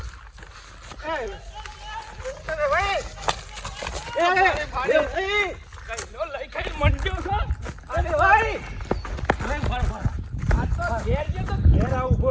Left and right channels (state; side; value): identical; both; correlation 1.00